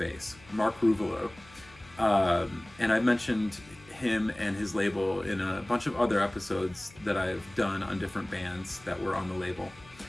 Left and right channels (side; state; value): left; noise; hum, 24 dB below the sound